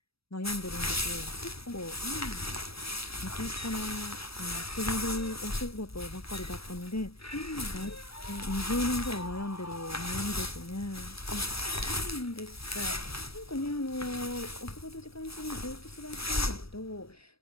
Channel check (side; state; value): right; late; 0.77 ms